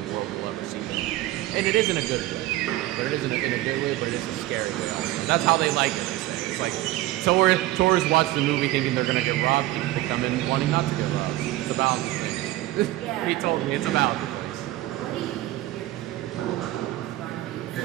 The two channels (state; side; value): quieter; left; 16.5 dB